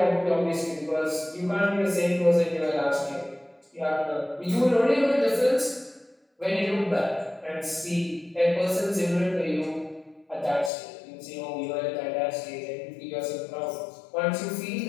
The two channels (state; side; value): drops out; right; at 10.7 s